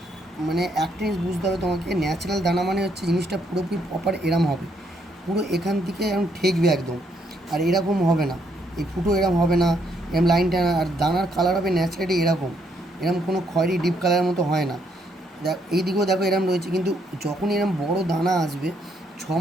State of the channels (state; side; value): normal; both; correlation 0.73